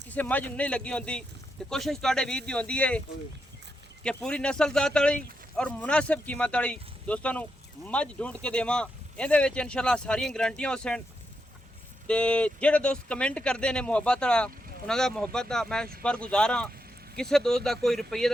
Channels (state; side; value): normal; both; correlation 0.84